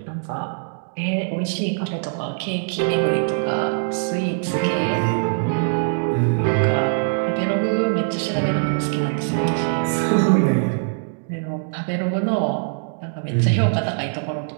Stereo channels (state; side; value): silent; left; digital silence